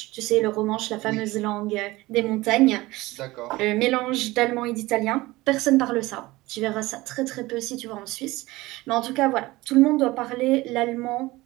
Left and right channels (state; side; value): quieter; left; 19.8 dB